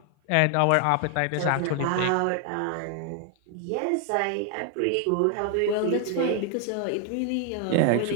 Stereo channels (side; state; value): both; different; correlation 0.01